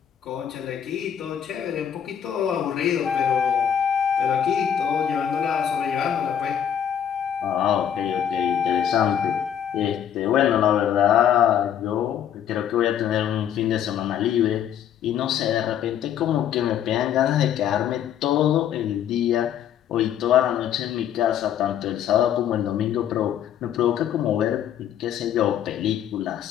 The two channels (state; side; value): quieter; right; 9.4 dB